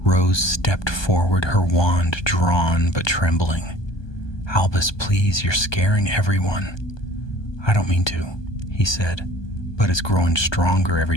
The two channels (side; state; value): right; late; 1.2 ms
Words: Rose stepped forward, her wand drawn but trembling. "Albus, please, you're scaring everyone." "I don't mean to," he said, "but it's growing stronger every